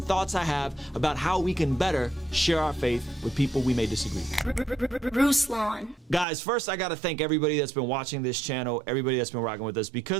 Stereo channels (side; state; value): left; drops out; at 6.2 s